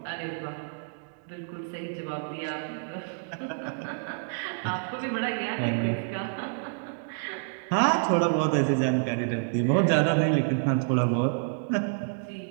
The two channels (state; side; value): silent; left; digital silence